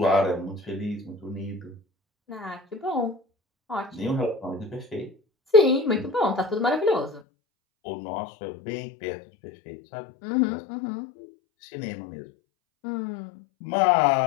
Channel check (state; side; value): drops out; right; at 7.2 s